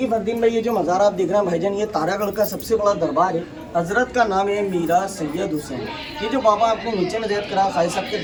फरदीन भाई, ये जो मज़ार आप देख रहे हैं भाईजान, ये तारागढ़ का सबसे बड़ा दरबार है। हजरत का नाम है मीरा सैयद हुसैन। ये जो बाबा आपने नीचे में ज़ैद करा खाई साहब के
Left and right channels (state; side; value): identical; both; correlation 1.00